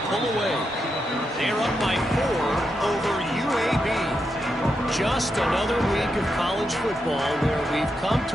pull away. They're up by 4 over UAB. Just another week of college football where we've come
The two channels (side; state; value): both; normal; correlation 0.84